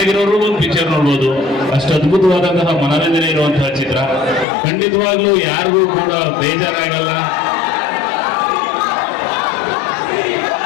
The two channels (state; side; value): drops out; right; at 4.5 s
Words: ಒಂದು ಪಿಕ್ಚರ್ ನೋಡ್ಬೋದು. ಅಷ್ಟು ಅದ್ಭುತವಾದಂತಹ ಮನೋರಂಜನೆ ಇರುವಂತಹ ಚಿತ್ರ. ಖಂಡಿತವಾಗ್ಲೂ ಯಾರಿಗೂ ಕೂಡ ಬೇಜಾರಾಗಲ್ಲ.